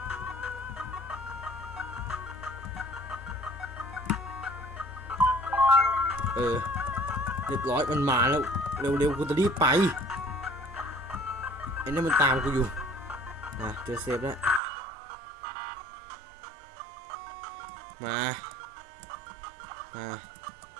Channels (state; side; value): drops out; left; at 14.6 s